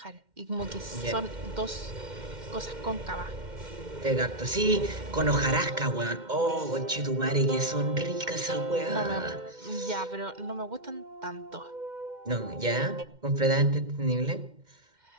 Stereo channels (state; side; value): late; left; 2.1 ms